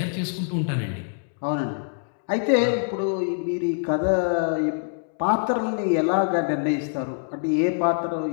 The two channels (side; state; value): right; silent; digital silence